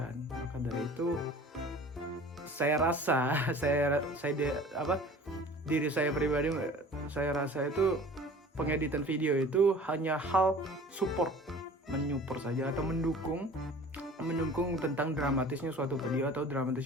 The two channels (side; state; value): both; normal; correlation 0.44